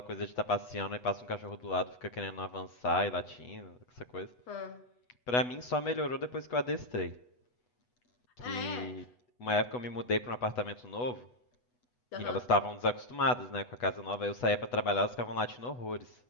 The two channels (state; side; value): late; right; 8.1 ms